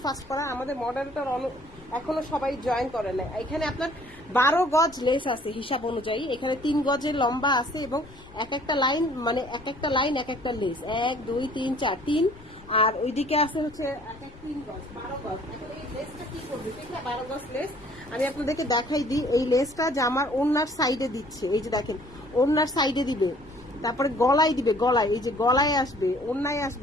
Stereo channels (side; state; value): left; noise; rumble, 23 dB below the sound